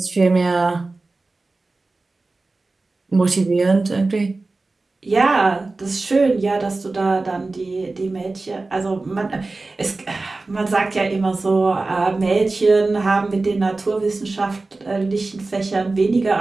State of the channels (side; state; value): left; quieter; 3.4 dB